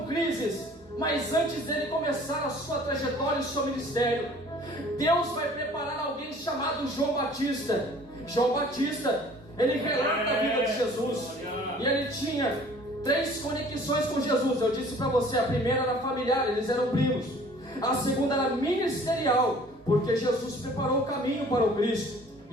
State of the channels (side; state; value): both; normal; correlation 0.51